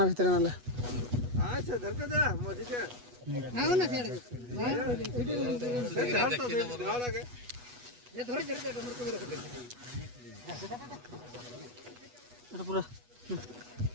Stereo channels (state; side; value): late; left; 8.2 ms